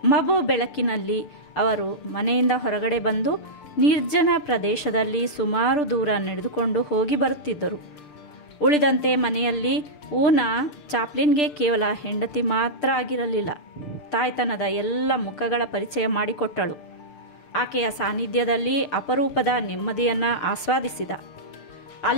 ಮಬು ಬೆಳಕಿನಲ್ಲಿ ಅವರು ಮನೆಯಿಂದ ಹೊರಗಡೆ ಬಂದು ನಿರ್ಜನ ಪ್ರದೇಶದಲ್ಲಿ ಸುಮಾರು ದೂರ ನಡೆದುಕೊಂಡು ಹೋಗಿ ಬರುತ್ತಿದ್ದರು. ಉಳಿದಂತೆ ಮನೆಯಲ್ಲಿ ಊನಾ ಚಾಪ್ಲಿನ್ಗೆ ಕೇವಲ ಹೆಂಡತಿ ಮಾತ್ರ ಆಗಿರಲಿಲ್ಲ, ತಾಯ್ತನದ ಎಲ್ಲ ಮುಖಗಳ ಪರಿಚಯ ಮಾಡಿಕೊಟ್ಟಳು. ಆಕೆಯ ಸಾನ್ನಿಧ್ಯದಲ್ಲಿ ಅಪರೂಪದ ನೆಮ್ಮದಿಯನ್ನು ಆಸ್ವಾದಿಸಿದ.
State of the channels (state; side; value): late; right; 6.7 ms